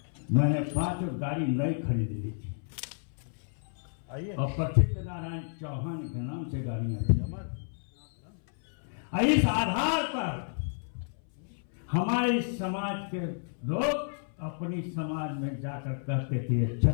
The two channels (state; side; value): silent; right; 57 dB below the other